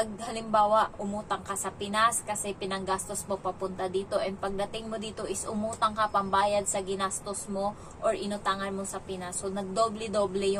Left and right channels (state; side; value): identical; both; correlation 1.00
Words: halimbawa umutang ka sa Pinas kasi pinanggastos mo papunta dito, and pagdating mo dito is umutang ka pambayad sa ginastos mo or inutangan mo sa Pinas. So nagdoble-doble